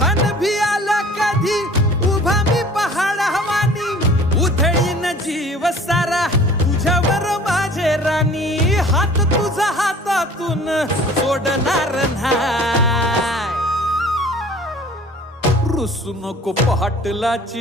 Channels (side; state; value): both; normal; correlation 0.48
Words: भी आला कधी उभा मी पहाड हवानी उधळीन जीव सारा तुझ्यावर माझे राणी हात तुझा हातातून सोडणार नाही रुसू नको